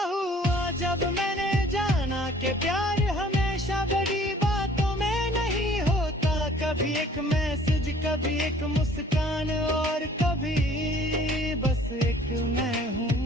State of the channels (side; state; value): both; normal; correlation 0.54